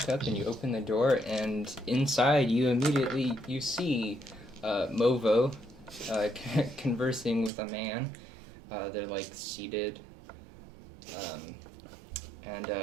up and you open the door, and inside you immediately see Movo conversing with a man. They're like seated, and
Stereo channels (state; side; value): drops out; left; at 7.5 s